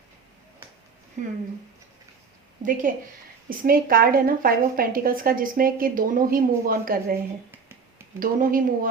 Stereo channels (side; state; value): left; quieter; 5.3 dB